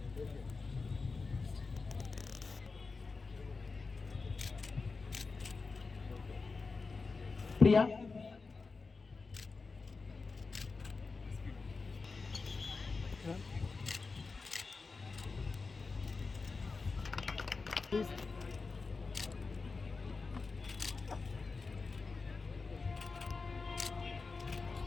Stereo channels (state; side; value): quieter; right; 4.2 dB